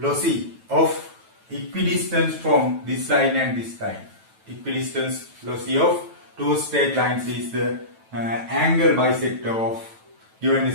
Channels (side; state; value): left; late; 9.1 ms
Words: of equidistance from this line and this line. Equidistance loci of two straight lines is the angle bisector of given